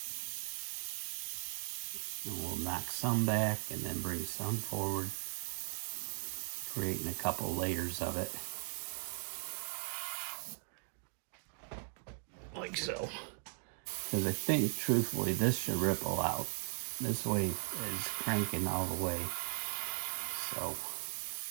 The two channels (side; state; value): left; silent; 52 dB below the other